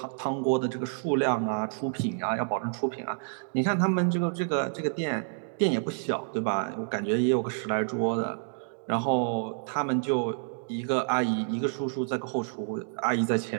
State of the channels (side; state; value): left; silent; digital silence